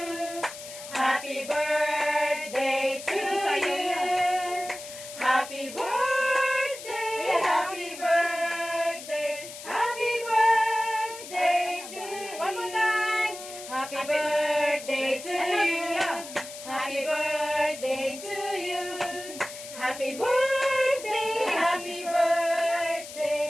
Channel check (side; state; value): left; noise; hiss, 13 dB below the sound